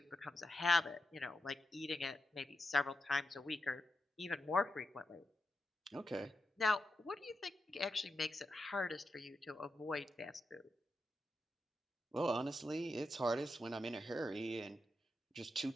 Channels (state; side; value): normal; both; correlation 0.87